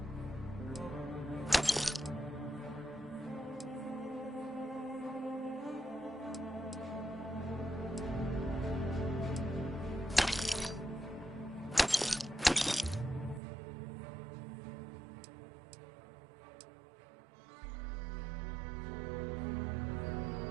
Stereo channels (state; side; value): drops out; left; at 13.4 s